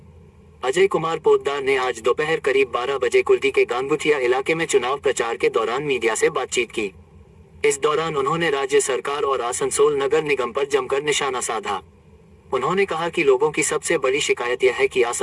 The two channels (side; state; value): both; identical; correlation 1.00